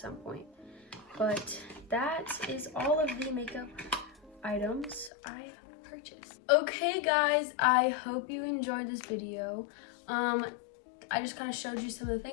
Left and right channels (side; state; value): right; drops out; at 5.1 s